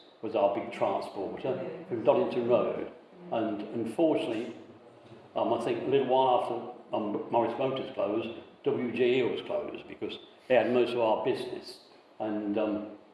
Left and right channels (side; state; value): both; identical; correlation 1.00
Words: was our big transporter from Doddington Road, and unfortunately, I think a little while after Morris Motors closed, WG Eels closed because they had most of our business. And